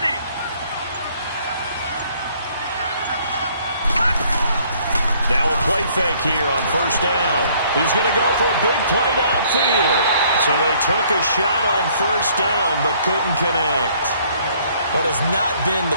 Now a play fake here on first down. He's going to go for a big play downfield. So they took a shot on first down but couldn't connect. What has not been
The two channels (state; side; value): inverted; both; correlation -0.62